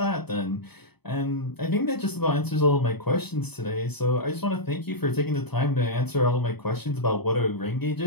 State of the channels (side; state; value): right; late; 0.98 ms